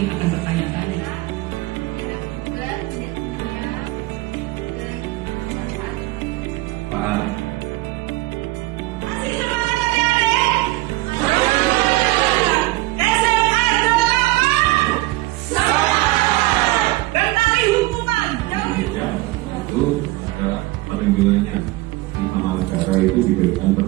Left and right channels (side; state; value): left; quieter; 19.7 dB